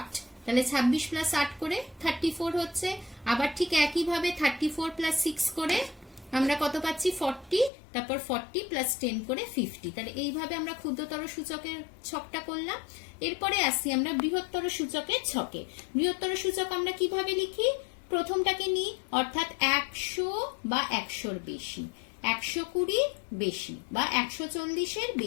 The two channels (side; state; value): right; drops out; at 7.7 s